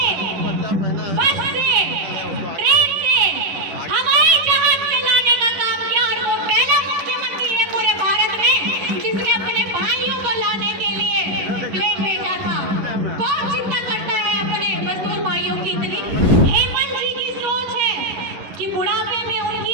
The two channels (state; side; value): late; left; 11 ms